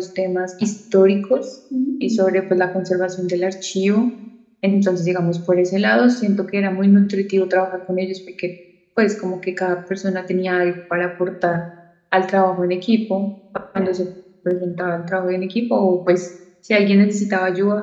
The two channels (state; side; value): identical; both; correlation 1.00